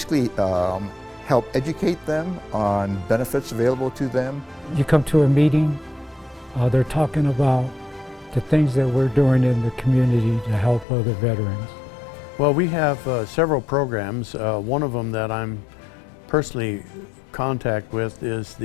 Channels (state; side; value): drops out; right; at 10.9 s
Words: help educate them on benefits available to them. You come to a meeting, they're talking about the things that we're doing in the community to help other veterans. Well, we have several programs. One of them that I'm personally contact with is